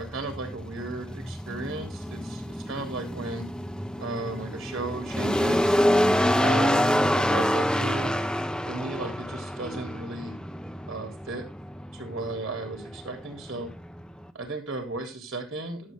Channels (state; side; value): normal; both; correlation 0.84